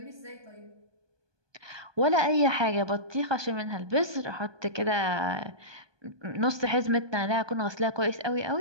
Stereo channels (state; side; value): late; left; 1.2 ms